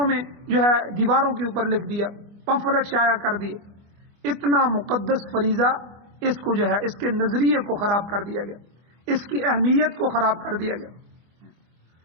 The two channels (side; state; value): left; late; 24 ms